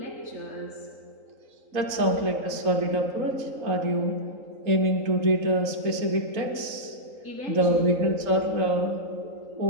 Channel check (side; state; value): left; late; 3.8 ms